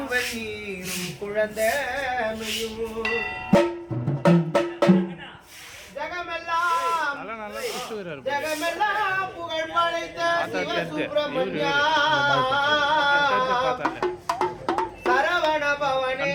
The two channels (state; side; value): identical; both; correlation 1.00